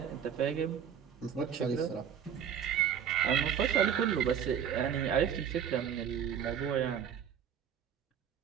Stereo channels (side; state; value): left; quieter; 8.4 dB